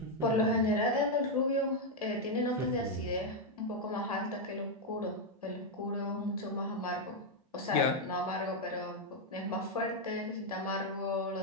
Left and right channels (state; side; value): normal; both; correlation 0.01